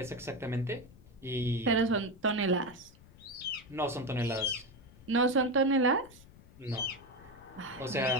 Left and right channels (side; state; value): left; noise; rumble, 22 dB below the sound